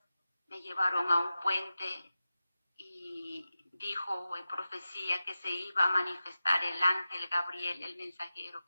me llevaron a un puente y dijo en profecía que se iba a manifestar el ángel Gabriel, el mensajero,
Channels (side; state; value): both; inverted; correlation -0.94